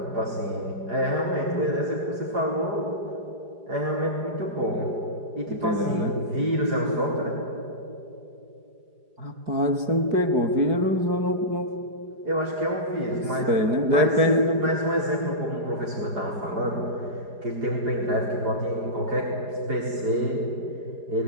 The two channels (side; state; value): left; late; 4.9 ms